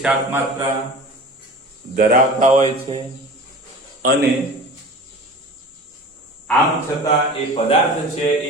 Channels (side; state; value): both; normal; correlation 0.37